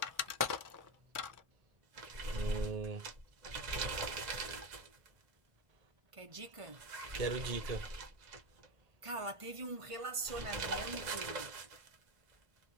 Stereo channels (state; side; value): late; left; 1.5 ms